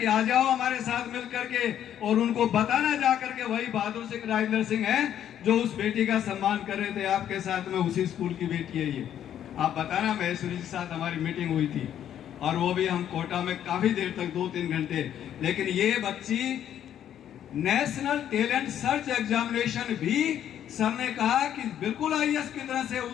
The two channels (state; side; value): quieter; right; 10.4 dB